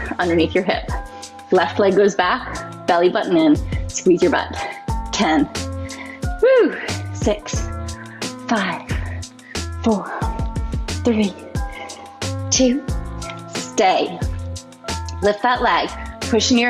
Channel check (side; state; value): both; identical; correlation 1.00